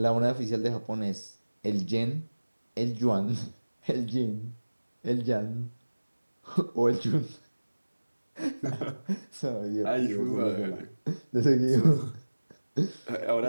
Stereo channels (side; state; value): both; inverted; correlation -1.00